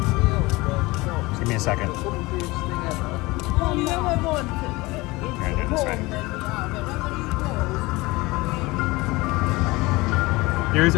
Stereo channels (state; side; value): quieter; right; 22.0 dB